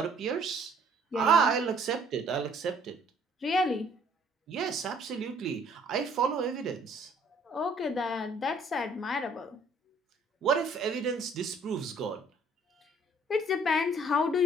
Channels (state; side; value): normal; both; correlation 0.60